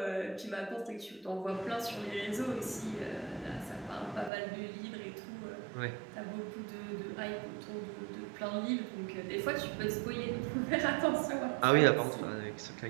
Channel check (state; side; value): drops out; left; at 4.3 s